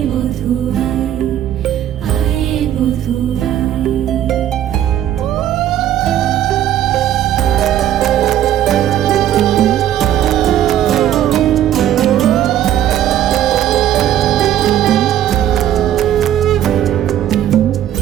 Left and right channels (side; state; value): left; quieter; 11.4 dB